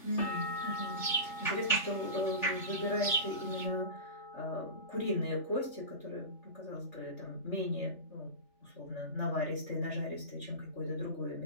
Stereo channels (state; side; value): late; right; 3.4 ms